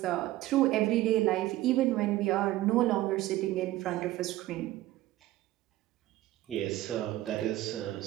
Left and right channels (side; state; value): left; quieter; 16.0 dB